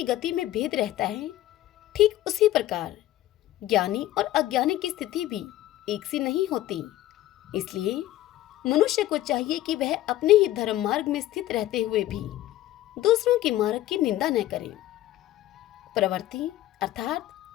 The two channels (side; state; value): right; quieter; 14.6 dB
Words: गति में भेद रहता है, ठीक उसी प्रकार ज्ञानी और अज्ञानी की स्थिति भी एक सी नहीं होती। इसलिए मनुष्य को चाहिए कि वह अपने ही धर्म मार्ग में स्थित रहते हुए भी दूसरों के मार्ग की निंदा न करे। प्रवृत्ति अर्थात